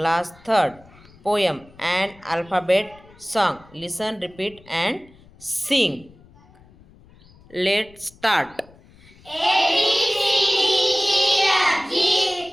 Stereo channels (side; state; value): left; noise; rumble, 26 dB below the sound